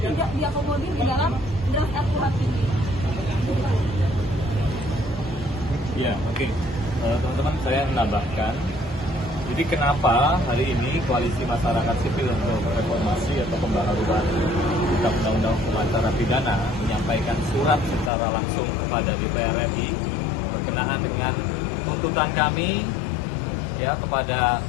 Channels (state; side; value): drops out; right; at 18.1 s